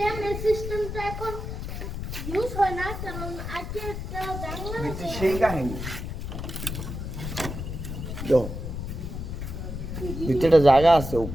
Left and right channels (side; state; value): left; noise; rumble, 6 dB below the sound